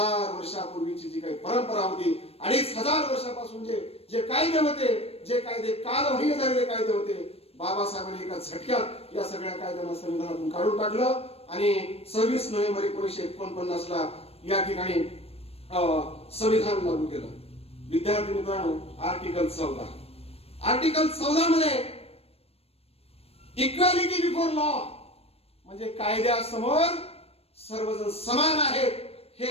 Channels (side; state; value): right; late; 0.29 ms